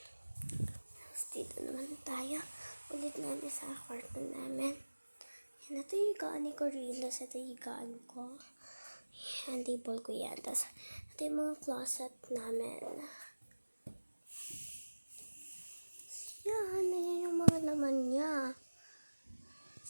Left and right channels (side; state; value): both; inverted; correlation -1.00